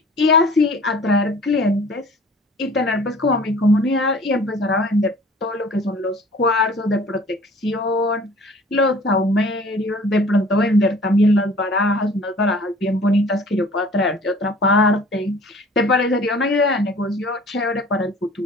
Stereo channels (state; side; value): normal; both; correlation 0.49